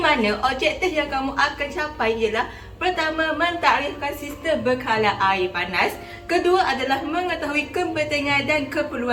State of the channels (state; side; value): identical; both; correlation 1.00